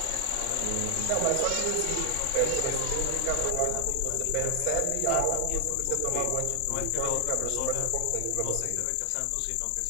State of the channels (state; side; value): different; both; correlation 0.00